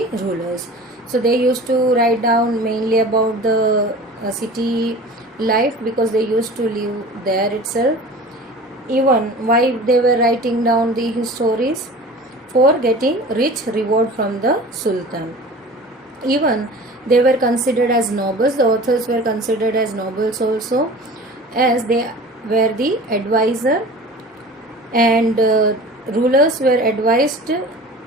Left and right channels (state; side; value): normal; both; correlation 0.40